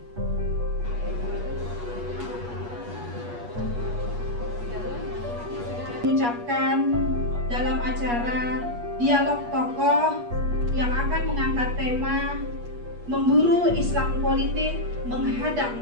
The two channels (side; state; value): left; late; 8.3 ms